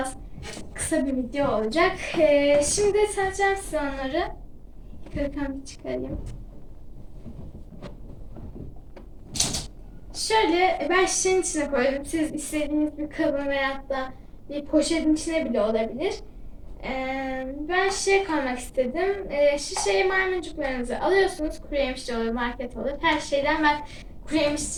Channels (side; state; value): both; identical; correlation 1.00